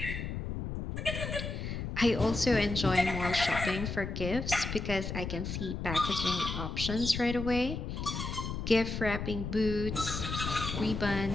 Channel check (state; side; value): noise; left; rumble, 5 dB below the sound